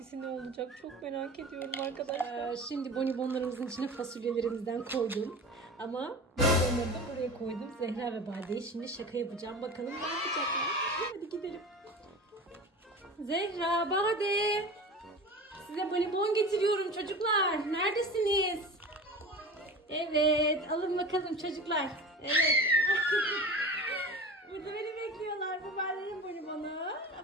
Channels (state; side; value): normal; both; correlation 0.34